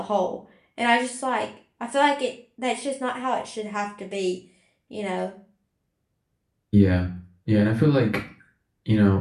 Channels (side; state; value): both; identical; correlation 1.00